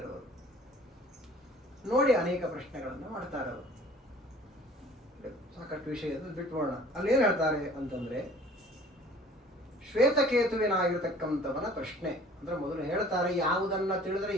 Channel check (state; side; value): normal; both; correlation 0.50